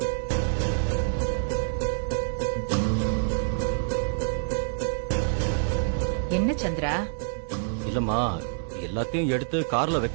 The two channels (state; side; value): silent; left; digital silence